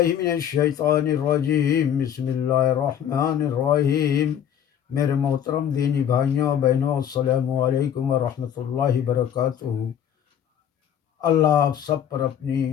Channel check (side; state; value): right; quieter; 9.4 dB